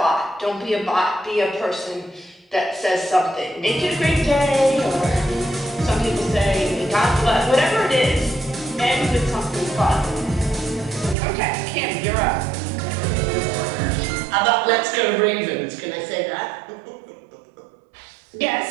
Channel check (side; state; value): left; drops out; at 11.2 s